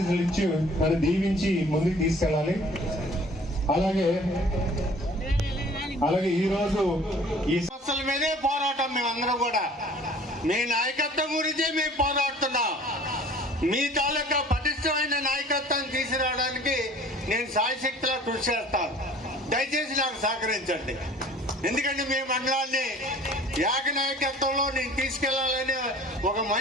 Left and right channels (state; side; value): normal; both; correlation 0.50